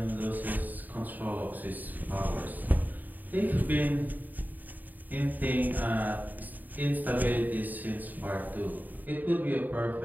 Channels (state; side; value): late; left; 0.085 ms